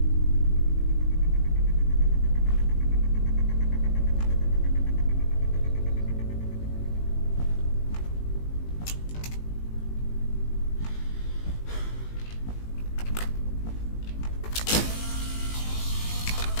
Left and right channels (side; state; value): right; late; 18 ms